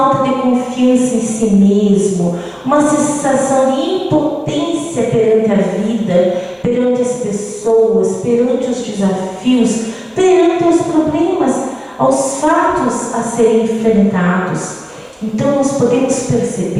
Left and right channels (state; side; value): identical; both; correlation 1.00